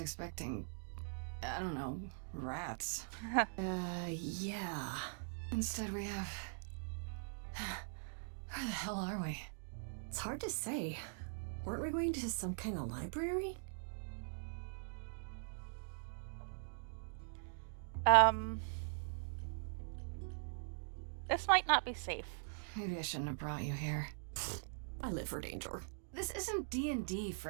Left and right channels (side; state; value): left; silent; digital silence